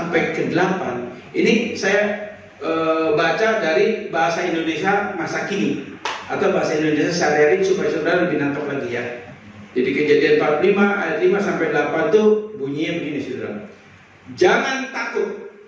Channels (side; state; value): both; identical; correlation 1.00